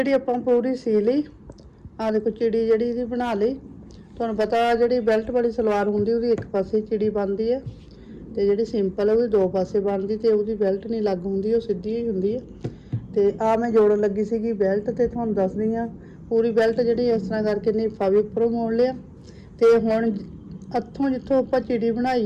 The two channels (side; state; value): both; identical; correlation 1.00